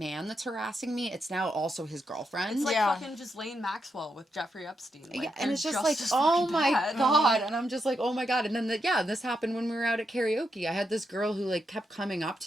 that's harassing me. It's now also his girlfriend. It's like Yeah. fucking Ghislaine Maxwell with Jeffrey Epstein. Like, Yeah, and they're it's just like, as oh fucking my bad. god, and I'm just like, oh my god, and then this happened when we were out at karaoke. I had this girl who like kept coming up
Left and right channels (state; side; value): normal; both; correlation 0.83